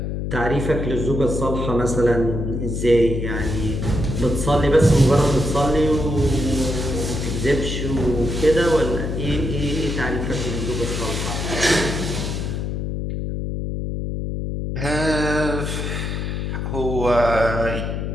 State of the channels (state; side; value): noise; left; hum, 3 dB below the sound